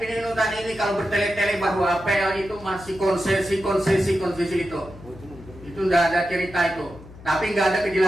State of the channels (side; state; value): left; noise; hum, 18 dB below the sound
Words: Inhutani ini, kalau bertele-tele bahwa APL itu masih konsesi itu. Itu nggak ada cerita itu. Tapi nggak ada